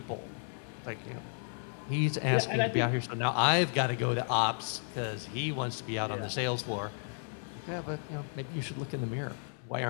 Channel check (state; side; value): silent; right; 56 dB below the other